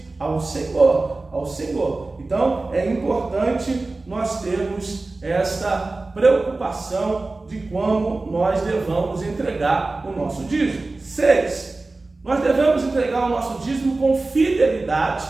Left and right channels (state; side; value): quieter; left; 3.3 dB